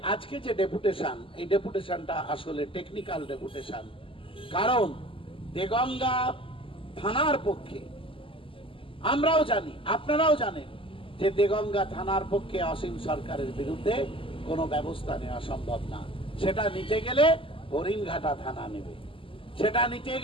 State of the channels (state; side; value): late; right; 0.25 ms